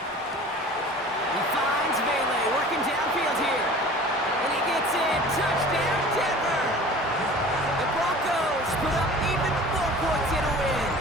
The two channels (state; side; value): normal; both; correlation 0.43